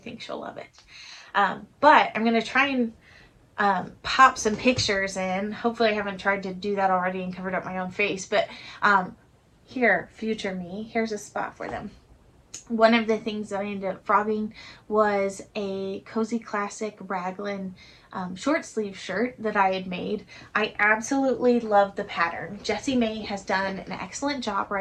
think she'll love it. But I'm going to try and pop some pictures in. Hopefully I haven't tried to do that already and covered up my own face, but here, future me, here's a spot for them. One of the things that I ended up frogging was a Cozy Classic raglan short sleeve shirt that I had made. I absolutely love the pattern. Jessie May has done an excellent job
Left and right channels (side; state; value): both; identical; correlation 1.00